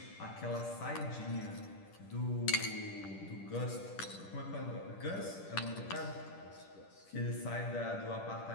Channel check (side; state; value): right; late; 10 ms